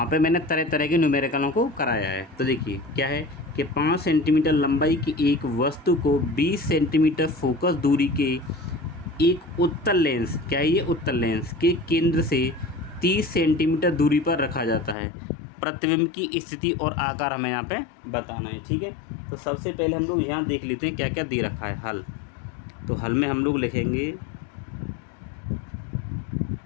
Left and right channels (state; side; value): drops out; right; at 15.0 s